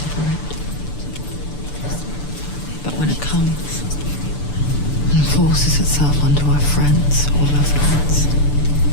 for it. But when it comes and forces itself onto our friends or loved ones,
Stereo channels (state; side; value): late; right; 6.9 ms